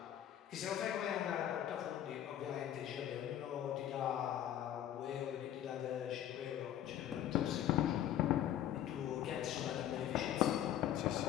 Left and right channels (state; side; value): quieter; right; 11.2 dB